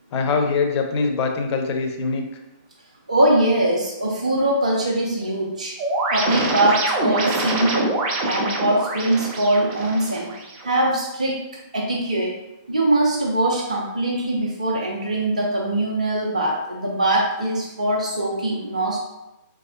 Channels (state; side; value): inverted; both; correlation -0.57